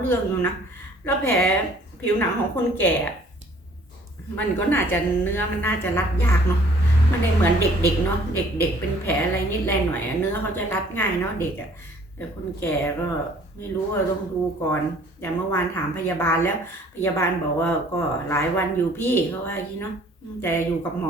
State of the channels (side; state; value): both; normal; correlation 0.56